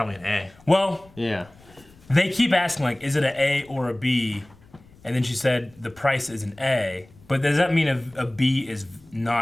an A. Well, yeah. They keep asking, like, is it an A or a B? And then she said the price is an A. But does that mean a B is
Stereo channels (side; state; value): left; noise; rumble, 26 dB below the sound